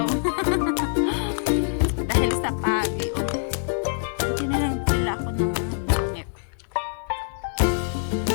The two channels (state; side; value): silent; right; digital silence